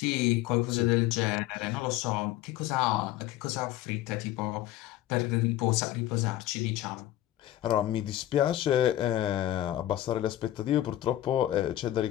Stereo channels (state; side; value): quieter; right; 13.8 dB